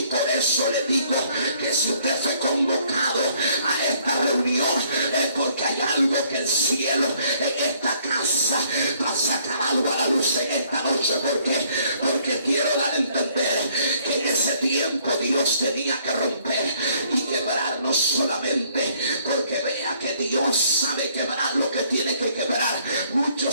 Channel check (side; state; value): both; inverted; correlation -0.64